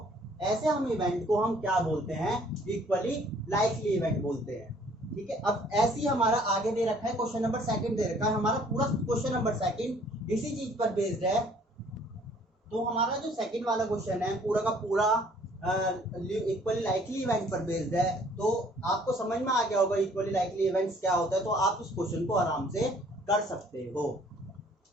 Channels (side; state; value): both; normal; correlation 0.58